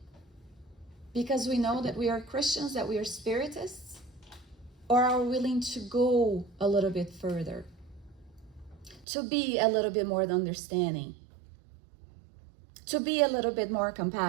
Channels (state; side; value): drops out; left; at 9.1 s